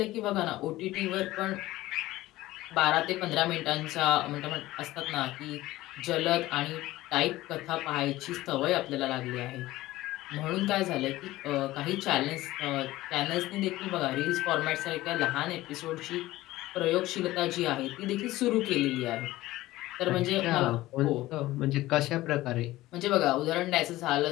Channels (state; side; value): quieter; right; 17.1 dB